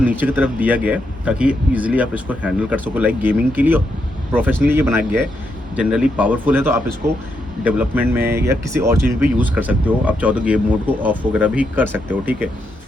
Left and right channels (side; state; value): both; normal; correlation 0.81